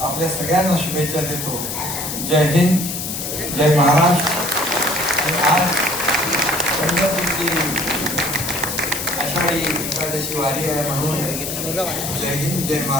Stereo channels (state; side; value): noise; left; hiss, 5 dB below the sound